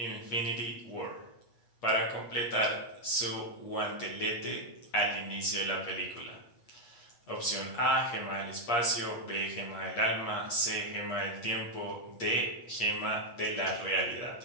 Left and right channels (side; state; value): right; late; 8.4 ms